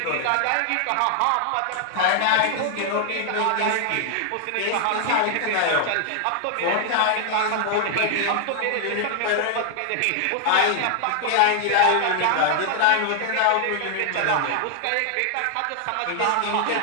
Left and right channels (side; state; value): both; different; correlation 0.00